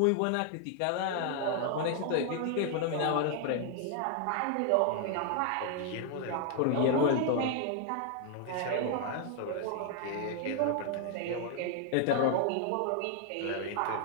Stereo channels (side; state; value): both; different; correlation 0.00